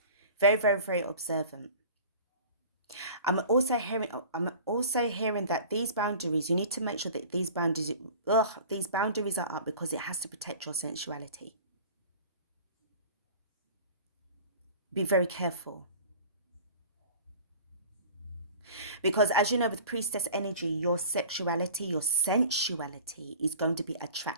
Very, very, very observant. I'm also hearing that these boundaries, you need to make sure that these boundaries are up because it has to protect your sensuality. Be very careful. Because as you know, with priestess energy, your sexuality, your sensuality is going to be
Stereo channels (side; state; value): both; inverted; correlation -0.42